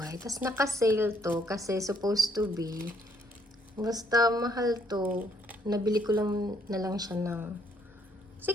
Tapos naka-sale to kasi supposed to be, basta mahal to. Nabili ko lang na lang siya ng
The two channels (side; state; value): both; normal; correlation 0.67